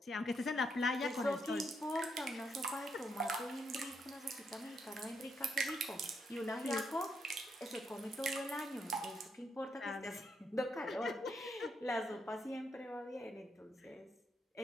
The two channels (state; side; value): normal; both; correlation 0.78